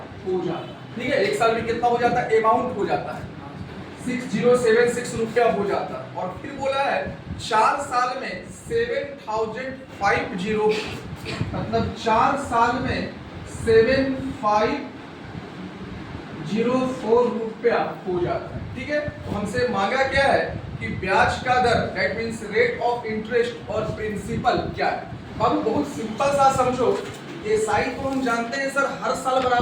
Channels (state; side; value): identical; both; correlation 1.00